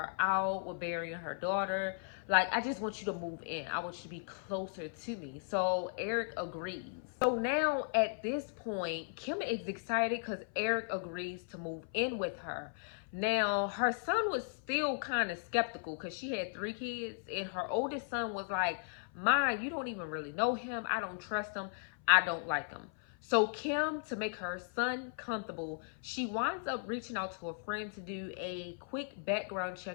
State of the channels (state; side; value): silent; right; 53 dB below the other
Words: out with burying her daughter. Like, I just want you to move in. I want you to be closer to me. So Eric agrees. So now at this point, Kim is excited because Eric agrees to move in with her. Now, her son was still kind of skeptical because she had 3 kids, and her oldest son was like, Ma, you don't even really know him. I don't trust him. I don't like him. So Kim, to make her son comfortable, she winds up reaching out to a friend to do a quick background